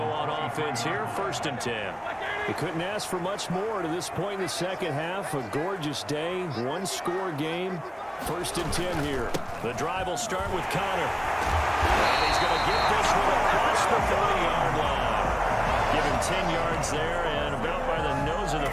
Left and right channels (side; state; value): both; identical; correlation 1.00